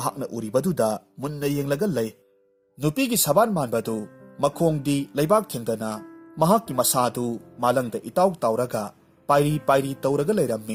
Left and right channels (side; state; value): both; identical; correlation 1.00